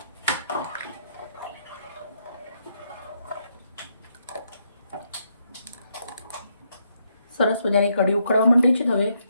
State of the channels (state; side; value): inverted; both; correlation -0.76